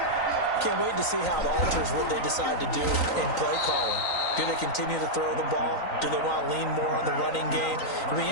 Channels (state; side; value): late; right; 3.9 ms